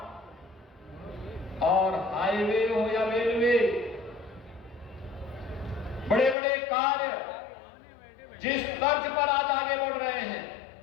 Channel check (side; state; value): right; drops out; at 6.4 s